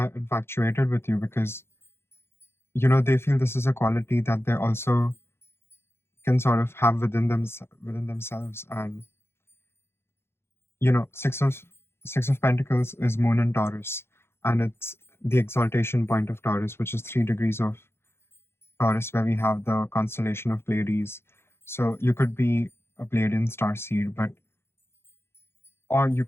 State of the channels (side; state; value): right; late; 0.12 ms